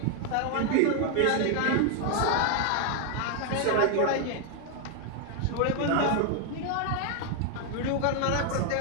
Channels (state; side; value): different; both; correlation 0.00